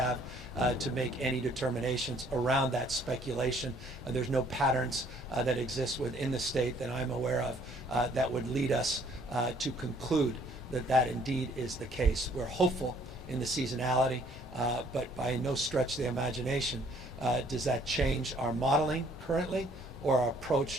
to make any determinations around that speculation. There's no patterns that exist within the state that I'm aware of that would lead us to conclude that indeed is the case. We're hopeful in the seasonality, but by no stretch of the imagination does that change our modeling currently or our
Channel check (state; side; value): normal; both; correlation 0.61